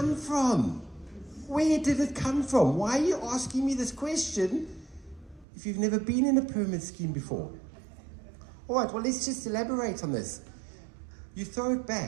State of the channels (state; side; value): drops out; left; at 5.5 s